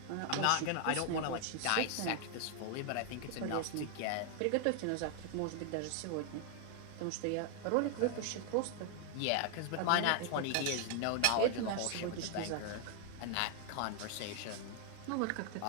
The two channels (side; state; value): both; different; correlation 0.00